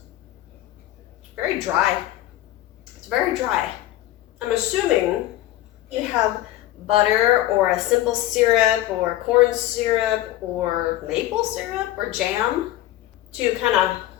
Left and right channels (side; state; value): right; quieter; 15.0 dB